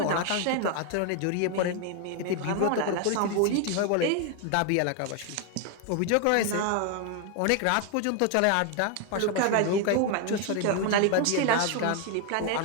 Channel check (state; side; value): different; both; correlation 0.01